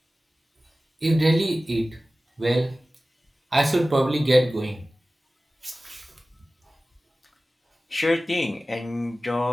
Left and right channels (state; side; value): normal; both; correlation 0.97